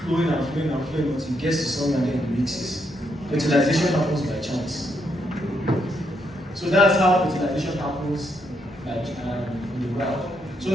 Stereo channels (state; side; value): normal; both; correlation 0.77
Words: flowing until it gets to somewhere and then it mixes. Fertilization happens by chance. So that's how fertilization happens in the wild. So